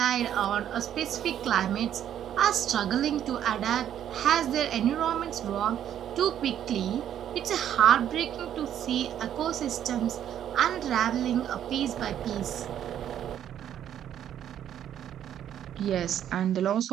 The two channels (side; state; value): left; quieter; 10.3 dB